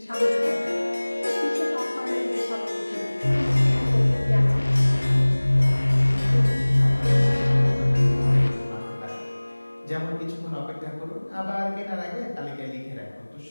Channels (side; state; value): both; inverted; correlation -1.00